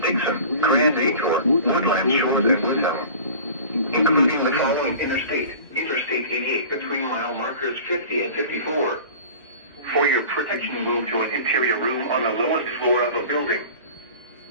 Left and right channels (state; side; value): inverted; both; correlation -0.39